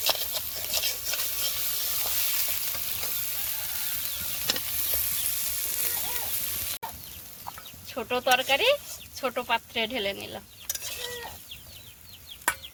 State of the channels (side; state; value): both; identical; correlation 1.00